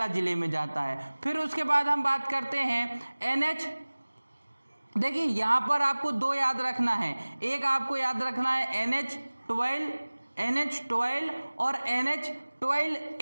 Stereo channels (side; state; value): both; inverted; correlation -1.00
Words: जिले में जाता है। फिर उसके बाद हम बात करते हैं देखिए यहाँ पर आपको 2 याद रखना है, एक आपको याद रखना है NH12 और